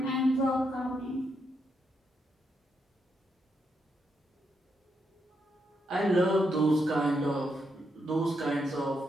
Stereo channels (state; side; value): normal; both; correlation 0.81